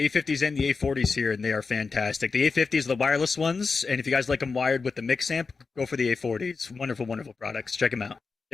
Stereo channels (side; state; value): right; quieter; 4.6 dB